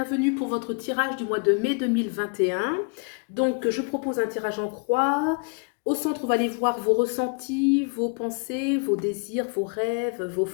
pour votre tirage du mois de mai 2021. Donc je propose un tirage en croix. Au centre, on va aller voir vos ressentis, vos pensées, vos désirs, vos rêves, vos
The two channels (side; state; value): right; quieter; 37.9 dB